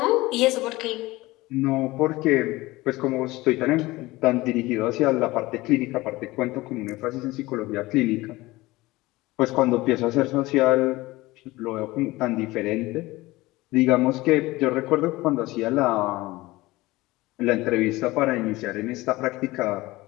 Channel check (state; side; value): quieter; right; 19.8 dB